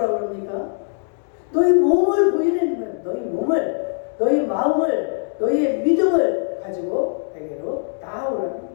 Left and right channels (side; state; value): right; silent; 65 dB below the other